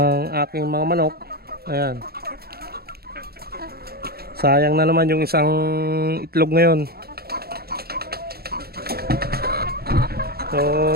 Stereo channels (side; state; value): left; late; 0.45 ms